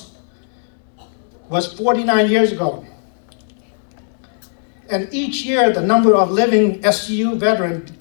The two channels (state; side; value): silent; right; digital silence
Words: was 49 years ago. And each year, the number of living SCU veterans